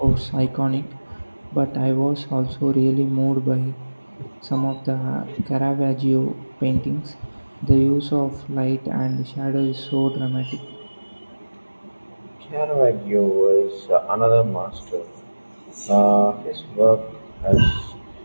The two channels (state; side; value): inverted; both; correlation -1.00